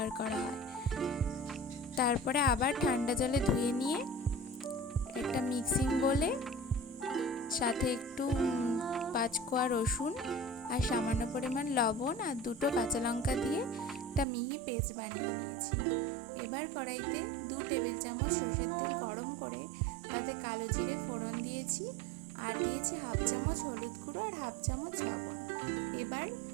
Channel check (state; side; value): drops out; left; at 14.2 s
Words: করা হয়। তারপরে আবার ঠান্ডা জলে ধুয়ে নিয়ে একটা মিক্সিং বোলে সাথে একটু 5 কোয়া রসুন আর সামান্য পরিমাণ লবণ আর 2টো কাঁচা লঙ্কা দিয়ে একটা মিহি পেস্ট বানিয়ে নিয়েছি। এবার কড়াইতে 2 টেবিল চামচ সরষের তেল গরম করে তাতে কালো জিরে ফোড়ন দিয়েছি, আর দিয়েছি হাফ চামচ হলুদ গুঁড়ো আর হাফ চামচ লবণ। এবার